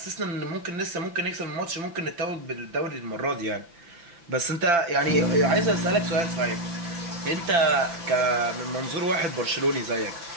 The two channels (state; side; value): late; left; 5.9 ms